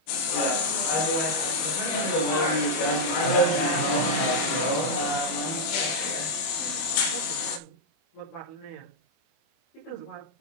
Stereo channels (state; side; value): late; right; 25 ms